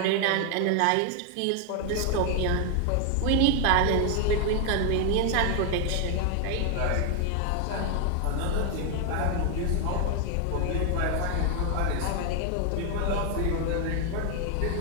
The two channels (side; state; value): both; different; correlation 0.01